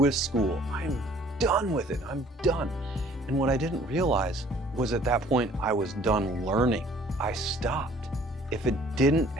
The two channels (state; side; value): normal; both; correlation 0.56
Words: school. I am done with it. I'm done. And what I didn't realize was at that point, I was done learning. I stopped. If it didn't